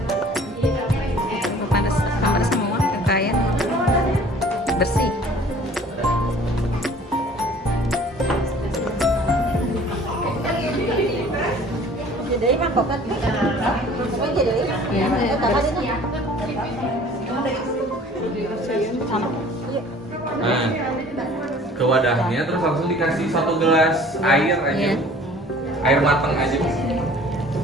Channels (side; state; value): both; normal; correlation 0.50